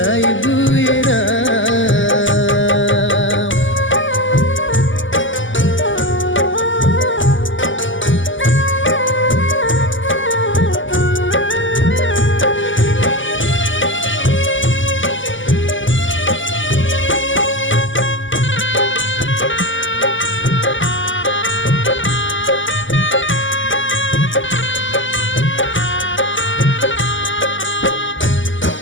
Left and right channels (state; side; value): late; right; 0.55 ms